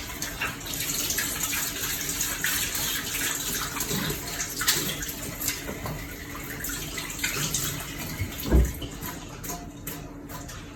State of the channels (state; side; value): identical; both; correlation 1.00